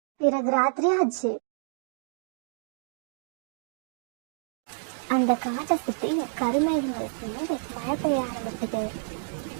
பிறகு ராத்திரி ஆச்சு. அந்த காட்டை சுத்தி கருமேகங்கள் சேர்ந்து மழை பெய்ய ஆரம்பிச்சது.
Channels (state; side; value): silent; left; digital silence